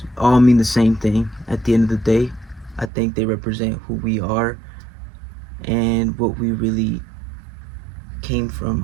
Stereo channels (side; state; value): left; drops out; at 2.9 s